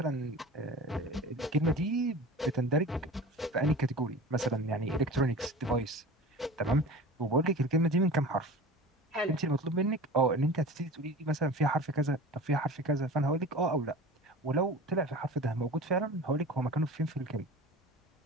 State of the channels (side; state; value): both; normal; correlation 0.36